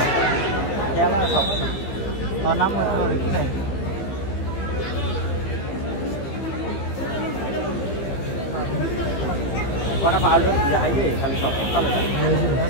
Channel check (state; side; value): late; right; 15 ms